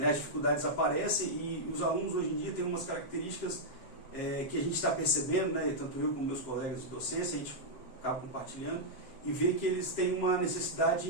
As dificuldades aparecem, e os alunos hoje em dia têm umas características que a gente está percebendo, né? Tanto eu como meus colegas de docência, a gente acaba compartilhando, e vê que eles têm uma necessidade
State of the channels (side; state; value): right; late; 7.3 ms